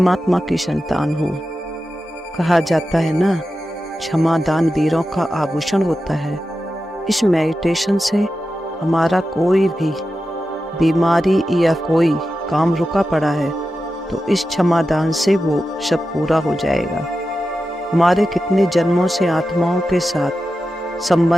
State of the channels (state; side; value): normal; both; correlation 0.91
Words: की संतान हूँ। कहा जाता है ना, क्षमादान वीरों का आभूषण होता है। इस मेडिटेशन से हमारा कोई भी बीमारी या कोई काम रुका पड़ा है तो इस क्षमादान से वो सब पूरा हो जाएगा। हमारे कितने जन्मों से आत्माओं के साथ